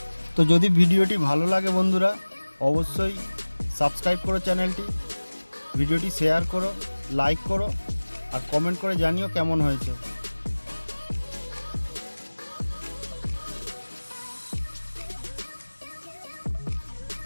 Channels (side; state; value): both; inverted; correlation -1.00